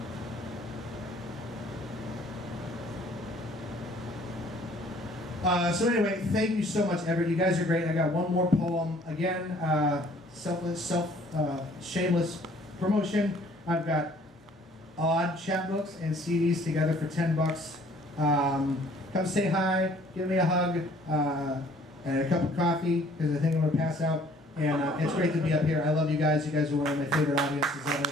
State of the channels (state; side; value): normal; both; correlation 0.57